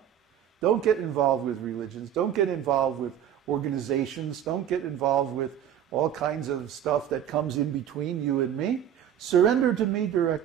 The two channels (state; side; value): quieter; left; 9.9 dB